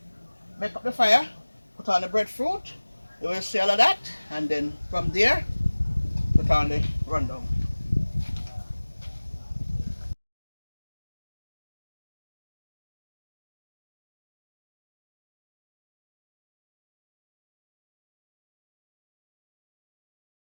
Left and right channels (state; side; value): inverted; both; correlation -1.00